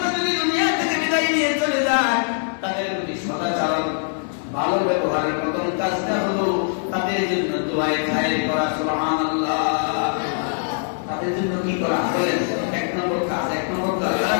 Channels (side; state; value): right; silent; digital silence